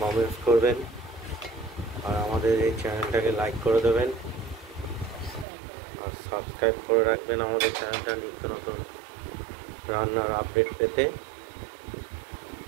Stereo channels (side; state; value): left; drops out; at 5.5 s